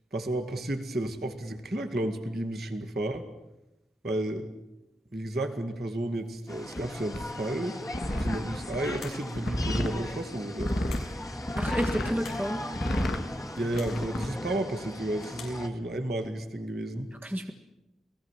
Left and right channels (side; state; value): both; normal; correlation 0.83